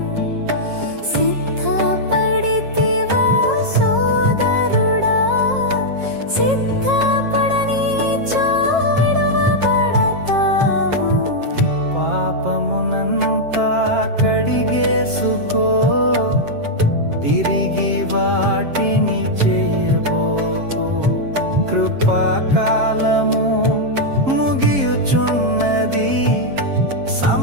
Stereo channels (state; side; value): late; left; 7.5 ms